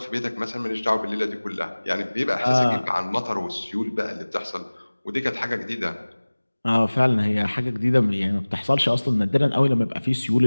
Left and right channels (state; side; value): inverted; both; correlation -1.00